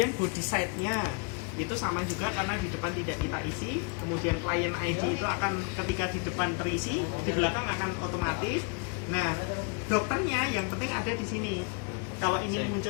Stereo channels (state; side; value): quieter; right; 32.9 dB